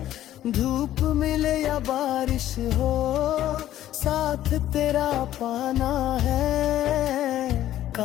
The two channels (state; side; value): quieter; right; 12.9 dB